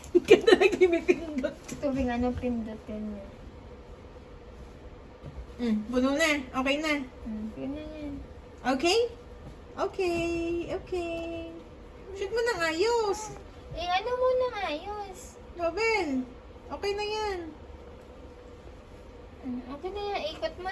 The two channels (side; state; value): both; identical; correlation 1.00